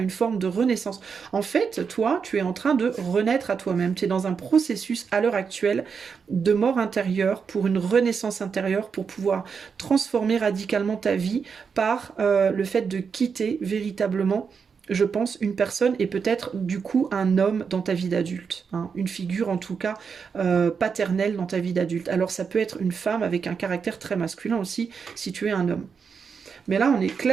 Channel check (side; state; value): left; quieter; 6.0 dB